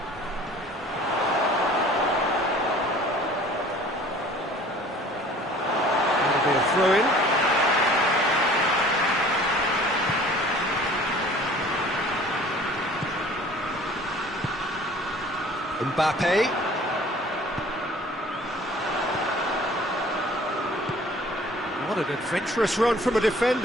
Throw in. Mbappe. What an adventurous run from a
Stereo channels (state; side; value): normal; both; correlation 0.49